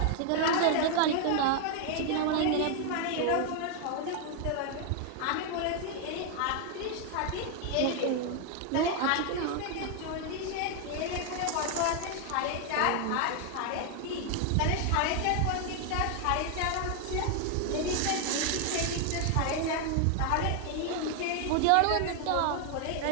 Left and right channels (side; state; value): both; different; correlation 0.00